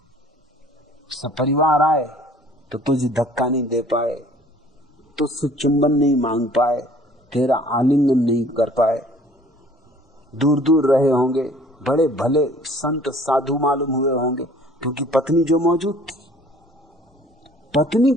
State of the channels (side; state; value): both; normal; correlation 0.53